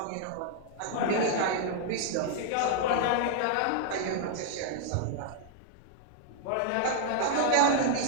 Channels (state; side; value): different; both; correlation 0.00